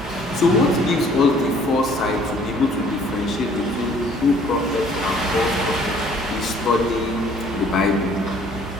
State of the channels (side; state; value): both; normal; correlation 0.57